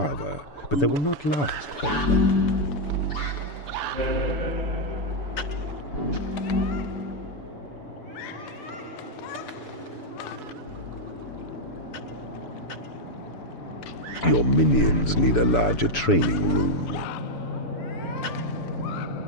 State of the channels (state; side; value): late; right; 6.9 ms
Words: but they will not last very long. Your minions need a larger training room.